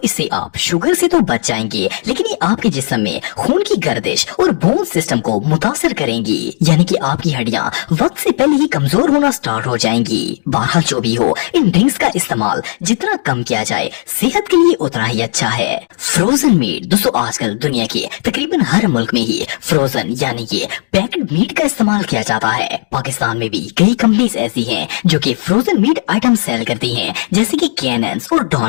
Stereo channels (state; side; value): silent; right; digital silence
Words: इससे आप शुगर से तो बच जाएंगे, लेकिन ये आपके जिस्म में खून की गर्दिश और बोन सिस्टम को मुतासर करेंगी, यानी कि आपकी हड्डियां वक्त से पहले ही कमजोर होना स्टार्ट हो जाएंगी। बहरहाल जो भी हो, इन ड्रिंक्स का इस्तेमाल जितना कम किया जाए सेहत के लिए उतना ही अच्छा है। फ्रोजन मीट, दोस्तों आजकल दुनिया के तकरीबन हर मुल्क में ही फ्रोजन यानी कि पैक्ड मीट का इस्तेमाल किया जाता है। पाकिस्तान में भी कई कंपनीज ऐसी हैं जो कि फ्रोजन मीट आइटम सेल करती हैं, जैसे कि कैनन्स और